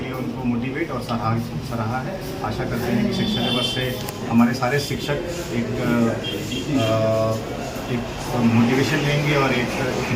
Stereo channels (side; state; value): both; identical; correlation 1.00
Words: लिए उनको मोटिवेट और सराहा है। आशा करते हैं कि शिक्षा दिवस से हमारे सारे शिक्षक एक मोटिवेशन लेंगे और एक